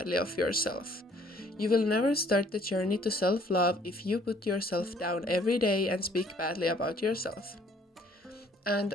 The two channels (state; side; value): normal; both; correlation 0.60